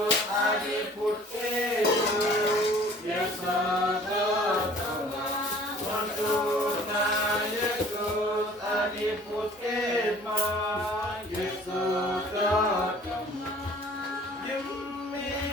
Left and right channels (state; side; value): normal; both; correlation 0.51